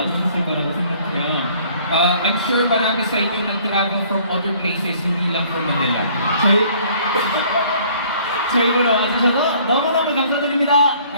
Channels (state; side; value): inverted; both; correlation -0.57